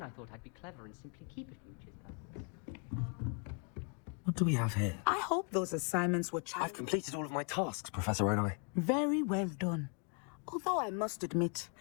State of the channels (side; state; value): right; quieter; 37.8 dB